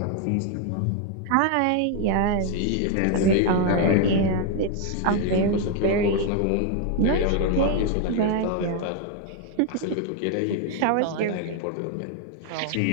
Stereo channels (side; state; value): both; different; correlation 0.01